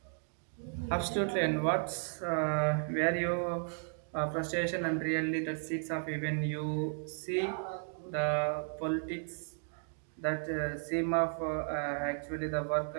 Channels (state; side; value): silent; left; 55 dB below the other